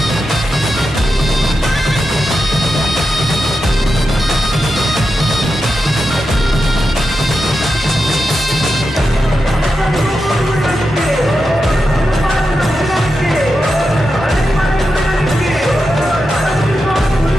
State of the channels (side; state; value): both; normal; correlation 0.89